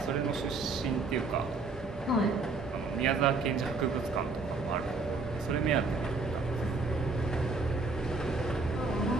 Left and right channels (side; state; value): left; quieter; 3.8 dB